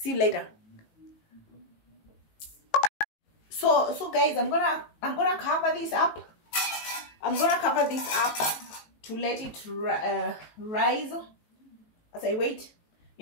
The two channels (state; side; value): late; right; 18 ms